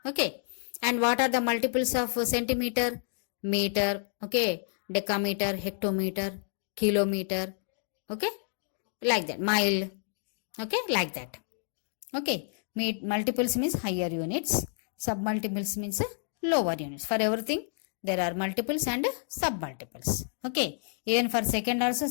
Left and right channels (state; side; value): silent; right; digital silence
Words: Okay. And what are the multiples of centimeter? Meter, okay, decameter, hectometer, kilometer, okay, like that, mile, okay, like that. Okay, multiples means higher units, submultiples means lower units. For everything there are multiples and submultiples. Okay, even for second also